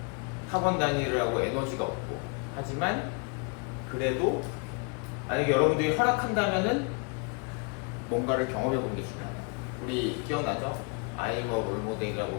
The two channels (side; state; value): right; quieter; 34.3 dB